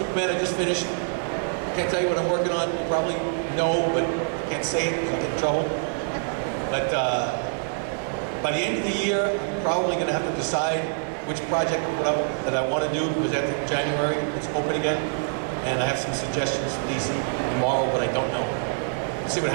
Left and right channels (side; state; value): left; silent; digital silence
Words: I just finished. Can't tell you what I'm working on. You probably know, but can't say it because I'll get in trouble. But by the end of the year, I'm probably going to have to decide which project that I want to do, because after January, it's open again. And I have some suggestions for DC tomorrow, but I don't know. We'll see what